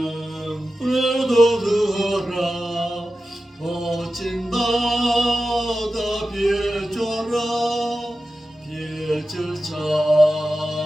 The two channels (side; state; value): both; normal; correlation 0.93